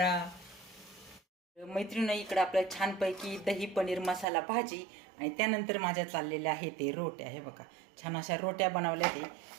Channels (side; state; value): left; drops out; at 4.2 s